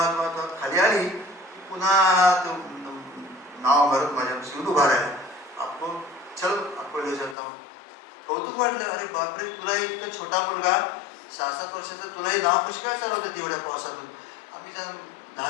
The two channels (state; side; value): drops out; right; at 7.4 s